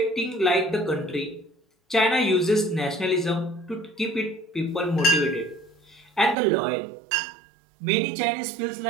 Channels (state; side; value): drops out; left; at 6.4 s